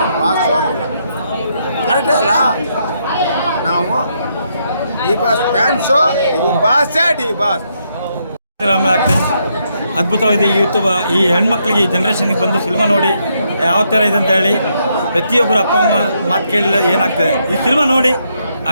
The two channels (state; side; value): inverted; both; correlation -0.77